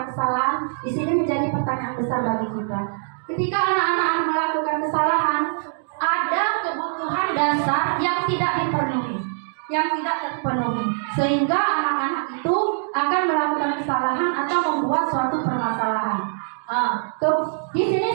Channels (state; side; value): silent; left; digital silence